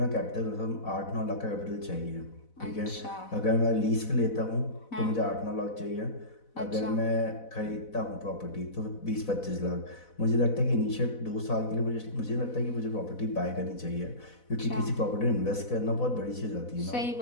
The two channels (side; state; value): right; late; 4.0 ms